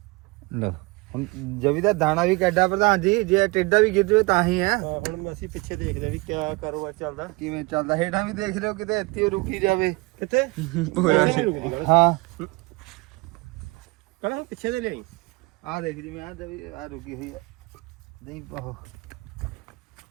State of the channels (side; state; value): left; quieter; 25.5 dB